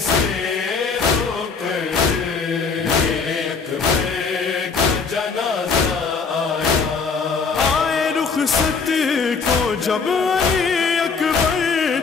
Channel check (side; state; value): right; quieter; 5.1 dB